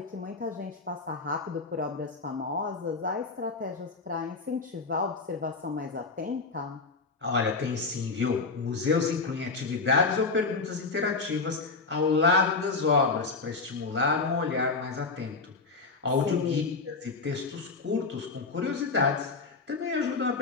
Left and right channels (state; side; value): quieter; right; 4.1 dB